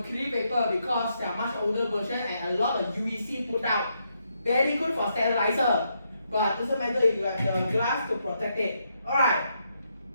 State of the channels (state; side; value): inverted; both; correlation -0.79